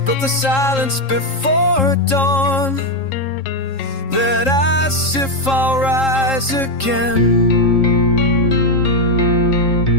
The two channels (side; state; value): right; late; 3.7 ms